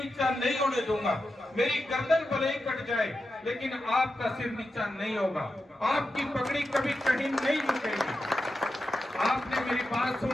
नहीं होने दूंगा। मेरी गर्दन भले ही कट जाए, लेकिन आपका सिर नीचा नहीं होगा। आपकी पगड़ी कभी कहीं नहीं झुकेगी। आपने मेरी बात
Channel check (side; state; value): both; normal; correlation 0.89